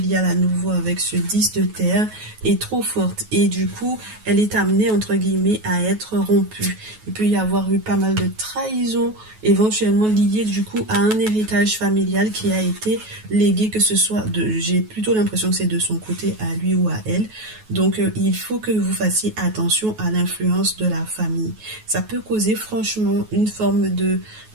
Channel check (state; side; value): late; left; 9.3 ms